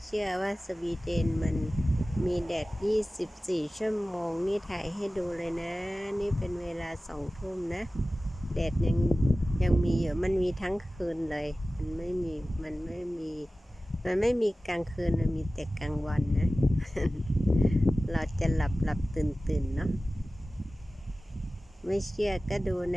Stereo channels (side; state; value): both; normal; correlation 0.96